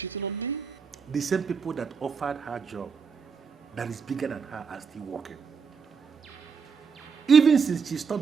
on me? The same people that offered her job that is bigger than her are still working. Even since she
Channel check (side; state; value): left; quieter; 5.8 dB